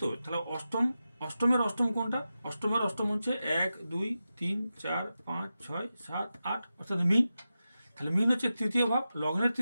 তো তাহলে অষ্টমের অষ্টম কোনটা? অষ্টমের অষ্টম হচ্ছে 1 2 3 4 5 6 7 8, অর্থাৎ মিন। তাহলে মিন হচ্ছে তৃতীয় ভাব, লগ্নের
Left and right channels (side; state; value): both; inverted; correlation -0.92